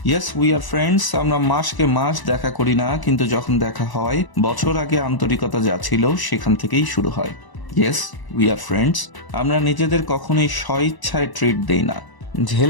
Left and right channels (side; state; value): right; late; 1.0 ms